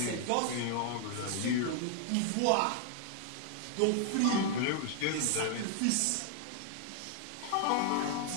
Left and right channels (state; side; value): different; both; correlation 0.00